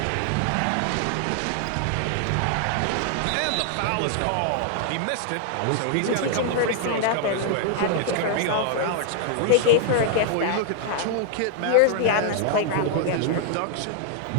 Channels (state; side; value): different; both; correlation 0.00